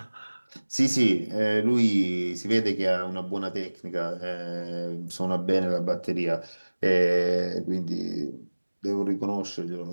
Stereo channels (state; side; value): inverted; both; correlation -1.00